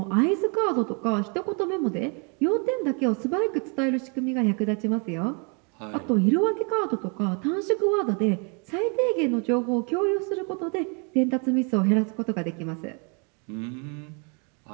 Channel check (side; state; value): left; quieter; 35.7 dB